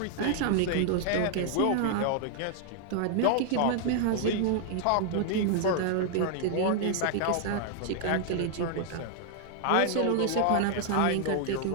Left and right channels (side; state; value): both; different; correlation 0.00